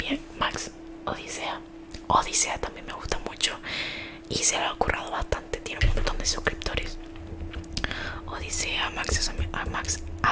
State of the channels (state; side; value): identical; both; correlation 1.00